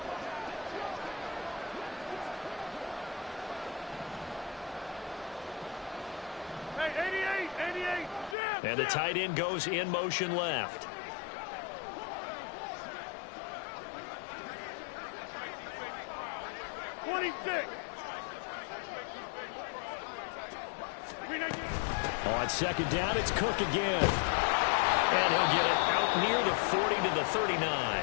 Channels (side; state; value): right; drops out; at 8.3 s